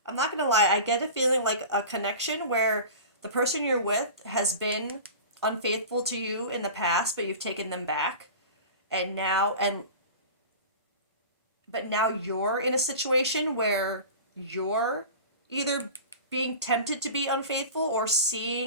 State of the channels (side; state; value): both; inverted; correlation -0.34